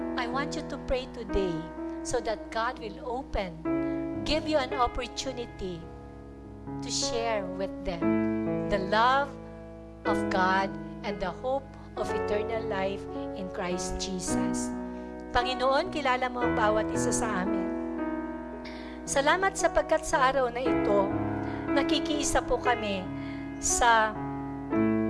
I want you to pray today so that God will give you an opportunity to share with them the love of God and the hope of eternal life in Christ Jesus. Panginoon, kilala mo ang bawat isa sa amin. Salamat sapagkat sa araw na ito, nakikiisa po kami sa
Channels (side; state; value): both; identical; correlation 1.00